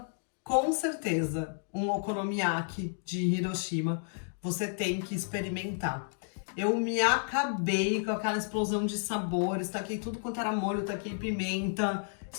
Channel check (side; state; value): right; silent; digital silence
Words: um okonomiyaki de Hiroshima você tem que experimentar. Eu me acabei com aquela explosão de sabores, taquei tudo quanto era molho, taquei pimenta,